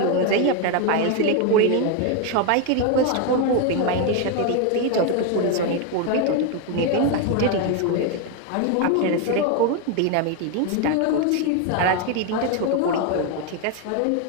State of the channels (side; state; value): both; different; correlation 0.02